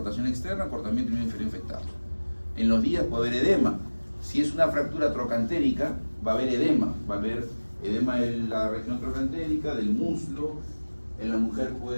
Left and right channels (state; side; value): inverted; both; correlation -1.00